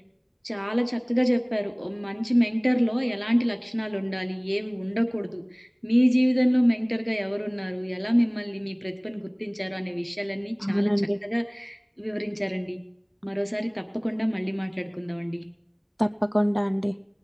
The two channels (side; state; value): both; identical; correlation 1.00